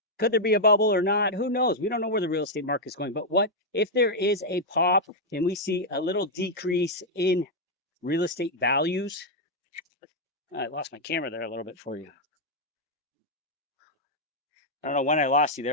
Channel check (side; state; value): both; normal; correlation -0.02